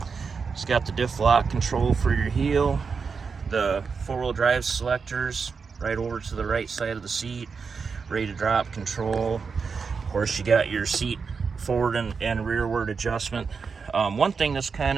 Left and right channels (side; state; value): left; quieter; 5.4 dB